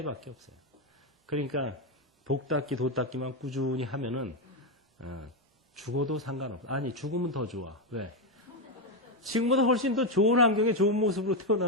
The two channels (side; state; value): both; normal; correlation 0.06